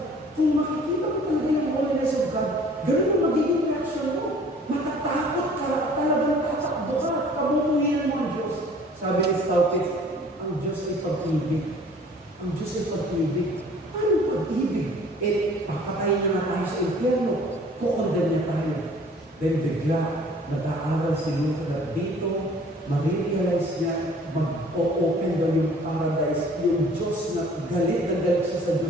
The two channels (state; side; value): normal; both; correlation 0.52